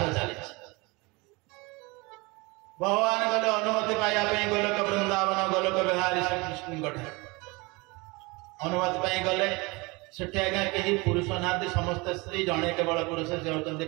चली भगवान गले अनुमति पाइबा गोलोक वृंदावन गोलोक बिहारी श्रीकृष्ण अनुमति पाई गले सेठी आज्ञा कहीं पुरुष ना समस्त स्त्री जड़े केवल पुरुष से होती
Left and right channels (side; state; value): left; quieter; 25.7 dB